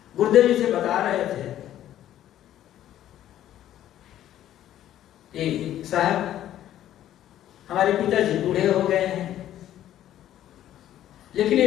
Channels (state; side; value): quieter; right; 12.1 dB